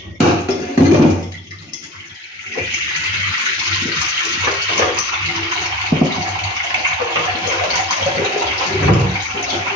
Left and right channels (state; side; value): normal; both; correlation 0.37